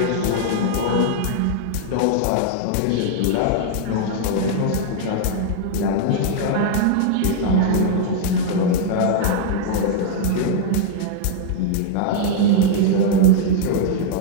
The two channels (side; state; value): both; different; correlation -0.01